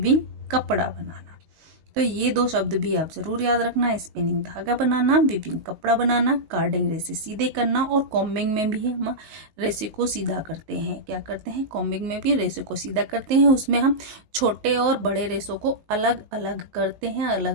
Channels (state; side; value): late; left; 19 ms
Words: कपड़ा बनाना। तो ये दो शब्द भी आप जरूर याद रखना, स्पिनिंग धागा बनाना, वीविंग कपड़ा बनाना, कार्डिंग रेसे सीधे करना, और कॉम्बिंग में भी हम रेसे को सीधा करते हैं। क्या करते हैं? कॉम्बिंग में भी रेसे को सीधा करते हैं। उसमें हम छोटे और बड़े रेसों को अलग अलग करते हैं,